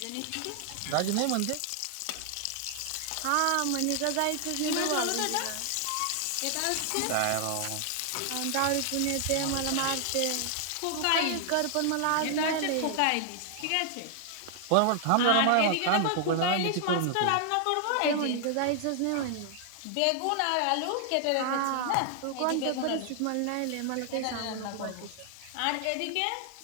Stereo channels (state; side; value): different; both; correlation 0.00